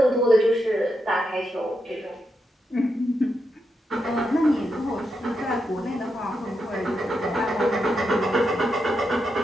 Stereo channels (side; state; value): both; normal; correlation 0.84